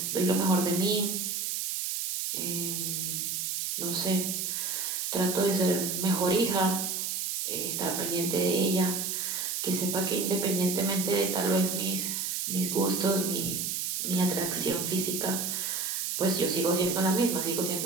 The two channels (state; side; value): noise; right; hiss, 1 dB below the sound